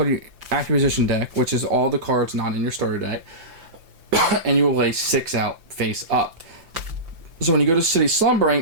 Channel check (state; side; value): late; left; 5.9 ms